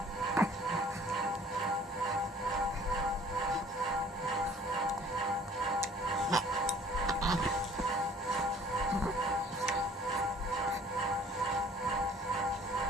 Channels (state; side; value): normal; both; correlation 0.53